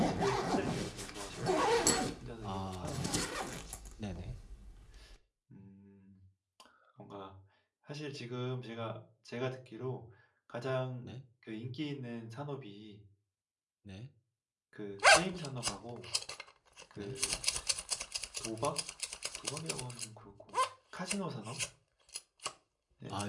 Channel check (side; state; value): both; identical; correlation 1.00